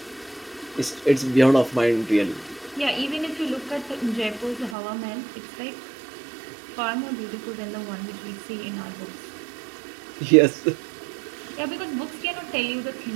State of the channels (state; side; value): drops out; left; at 4.8 s